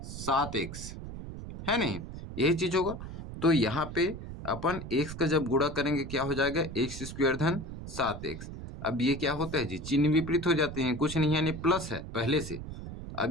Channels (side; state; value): right; noise; rumble, 10 dB below the sound